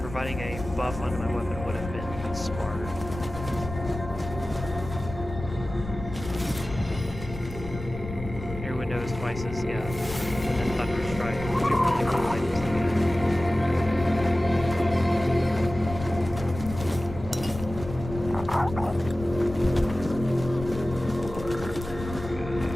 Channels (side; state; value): left; noise; rumble, 10 dB below the sound